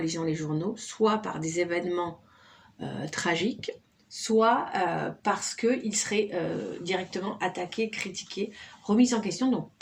les journaux, soit par des événements tragiques, soit parce qu'il serait directement attaqué, critiqué, remis en question. Donc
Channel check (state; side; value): identical; both; correlation 1.00